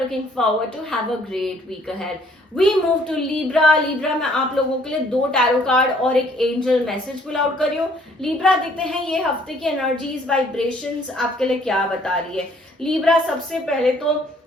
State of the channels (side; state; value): both; normal; correlation 0.61